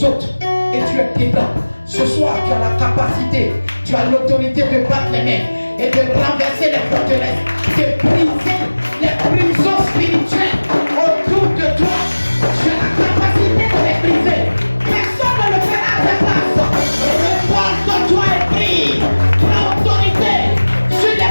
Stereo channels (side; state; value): both; inverted; correlation -1.00